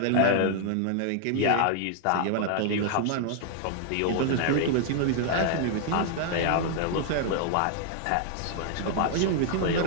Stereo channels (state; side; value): different; both; correlation 0.00